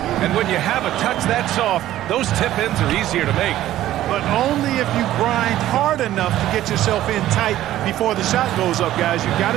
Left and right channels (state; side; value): quieter; left; 13.7 dB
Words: And when you have a touch that soft, those tip-ins are easier to make. But only if you grind hard enough to get yourself in tight before the shot goes up, guys. You've got